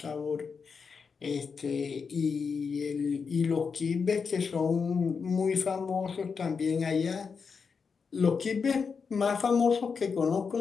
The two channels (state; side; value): quieter; right; 5.6 dB